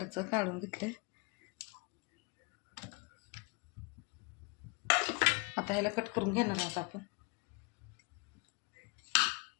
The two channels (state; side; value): quieter; right; 30.1 dB